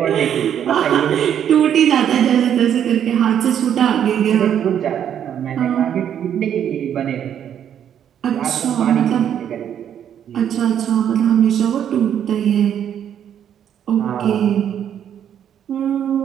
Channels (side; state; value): left; quieter; 9.4 dB